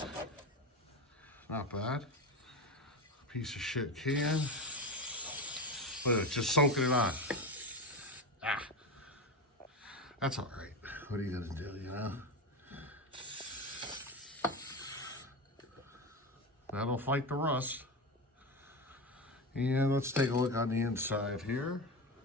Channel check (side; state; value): both; normal; correlation 0.20